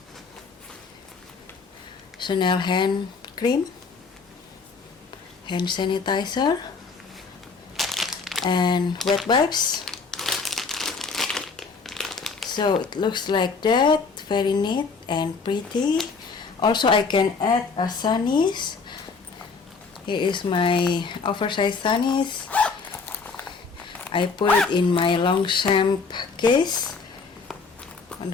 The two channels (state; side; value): quieter; right; 4.8 dB